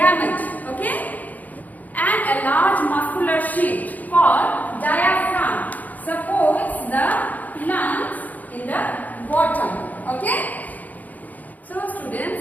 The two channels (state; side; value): late; right; 0.080 ms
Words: Okay? And a large muscular sheet called diaphragm supports the lungs in the bottom. Okay? So